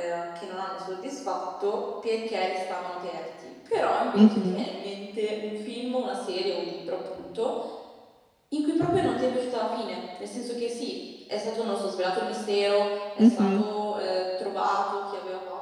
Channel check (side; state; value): both; identical; correlation 1.00